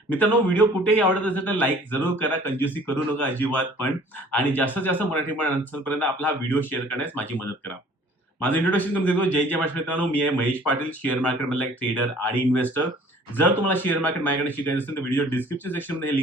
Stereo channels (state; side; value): normal; both; correlation 0.52